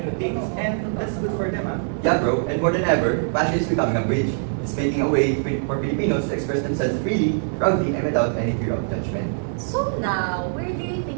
things. And that's good for them, Yeah, bro. And more than ever, fashion is becoming a bridge. It's making a way for Filipinos to express themselves freely, proudly, and without any fear of judgment. So now, where do you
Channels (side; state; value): left; silent; digital silence